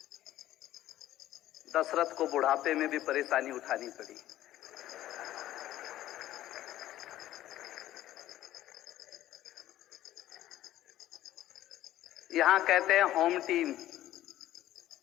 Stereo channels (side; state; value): right; quieter; 13.9 dB